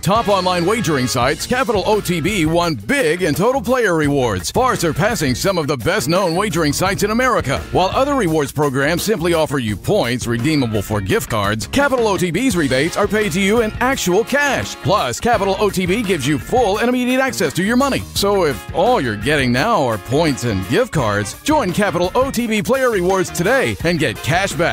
online wagering sites, Capital OTB won big in total player rewards, far surpassing some of the best-known wagering sites in America. While other rewards programs simply offer you points redeemable for gift cards, Capital OTB's rebates are paid to you in actual cash. Plus, Capital OTB gives you full and immediate access to your money. So if all you're getting now are points and gift cards, join Capital OTB Player Rewards today and get cash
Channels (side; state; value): both; identical; correlation 1.00